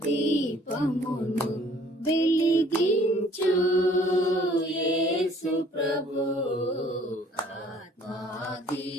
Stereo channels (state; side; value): normal; both; correlation 0.57